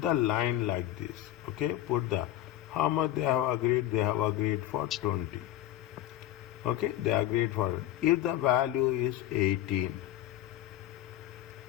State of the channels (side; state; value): right; quieter; 13.6 dB